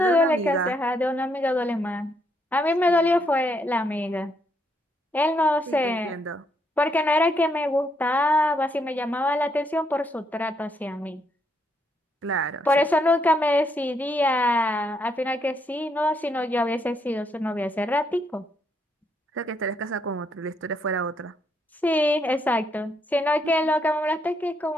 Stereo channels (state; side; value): normal; both; correlation 0.75